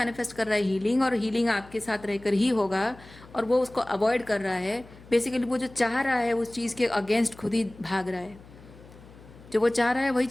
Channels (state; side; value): noise; left; hum, 21 dB below the sound